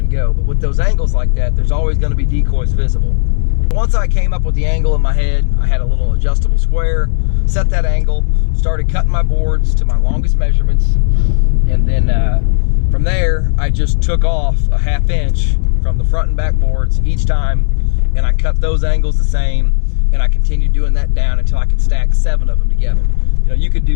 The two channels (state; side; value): silent; right; digital silence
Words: go. But with those angles like that, there's always going to be decoys visible. Once I came up with the angle in my head, I had a little adjustable square, set that angle, started cutting my boards to my longest measurements, and then from there I just took off a 1/2 inch from the front and back boards each time, and I cut those angles the same, and I continued doing that down until I could stack 7 of them together. You know, you could